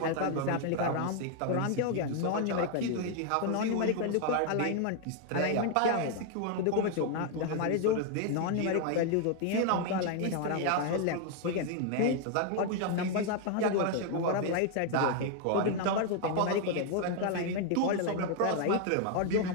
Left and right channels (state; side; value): different; both; correlation 0.00